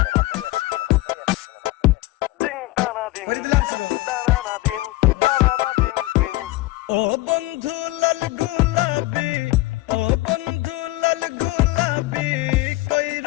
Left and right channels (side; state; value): right; quieter; 18.9 dB